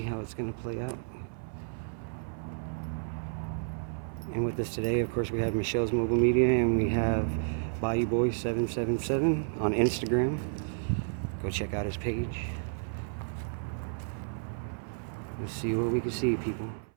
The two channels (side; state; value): left; silent; 57 dB below the other